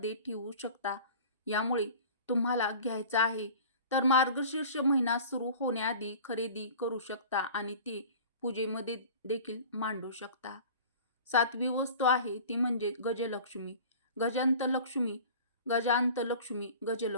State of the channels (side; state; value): both; inverted; correlation -0.41